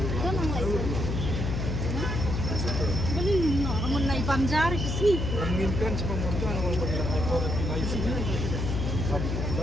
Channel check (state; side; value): noise; left; hum, 1 dB below the sound